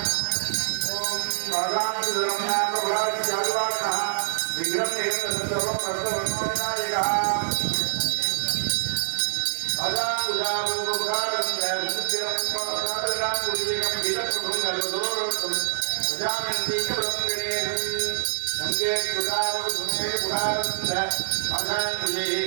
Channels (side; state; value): left; silent; digital silence